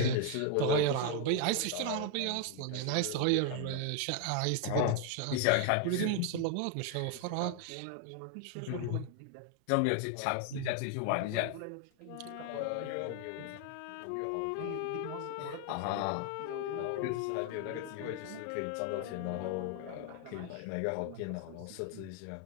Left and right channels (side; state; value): both; different; correlation 0.00